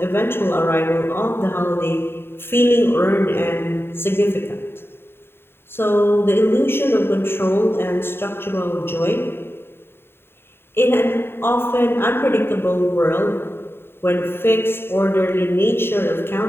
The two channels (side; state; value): right; late; 0.11 ms